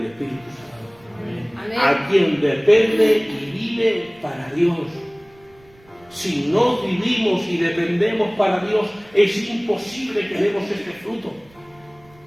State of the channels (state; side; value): noise; right; rumble, 29 dB below the sound